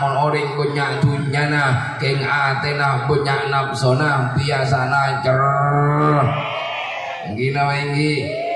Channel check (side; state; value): both; identical; correlation 1.00